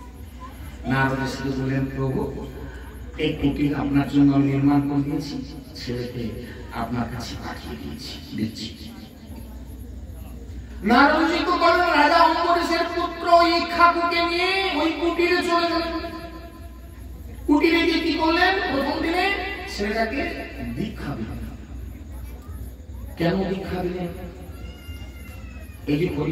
নারদ ঋষিকে বললেন, প্রভু এই কুটির আপনার জন্য আমি নির্মাণ করে দিয়েছি, ছেলেকে আপনার কাছে পাঠিয়ে দিচ্ছি। নারদ ঋষি তো বলেন, রাজা অম্বরীশের পুত্র ইক্ষ্বাকুকে নিয়ে ওই কুটিরে চলে গেলেন। কুটিরে গিয়ে কি করলেন? প্রথম দিনে ছেলেটাকে দীক্ষা দিলেন। কেন দীক্ষা দিলেন? এই যে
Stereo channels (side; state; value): both; identical; correlation 1.00